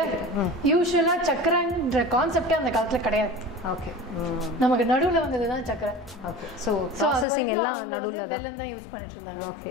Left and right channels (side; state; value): right; drops out; at 7.2 s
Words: யூஸ்வலாக சர்க்கரைன்ற கான்செப்டே அந்த காலத்தில் கிடையாது. ஓகே. நமக்கு நடுவில் வந்தது தான் சர்க்கரை. ஓகே. ஸோ அது வரைக்கும் நடுவில் வெல்லம் தான் யூஸ் பண்ணிட்டு இருந்தாங்க.